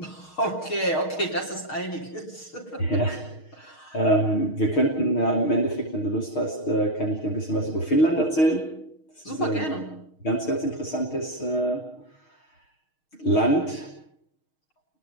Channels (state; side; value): late; right; 6.4 ms